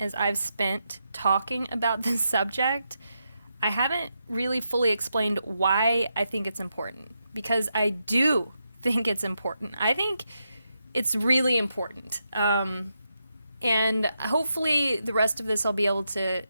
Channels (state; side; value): inverted; both; correlation -0.84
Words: I've spent talking about this subject, I haven't really fully explained why I think it's important. Because I do think it's important. I think it's really important. And hopefully the rest of this I'll be able to